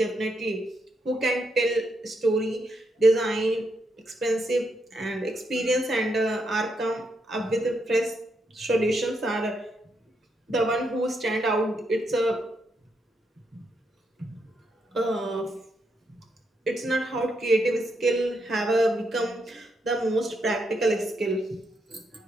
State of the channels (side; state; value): both; normal; correlation 0.80